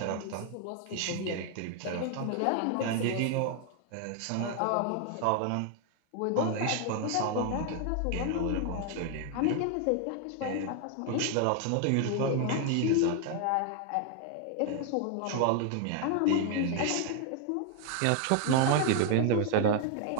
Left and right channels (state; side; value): different; both; correlation 0.00